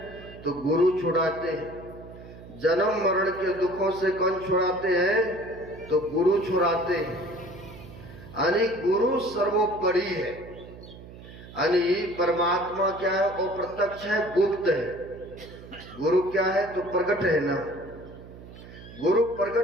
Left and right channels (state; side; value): noise; right; hum, 17 dB below the sound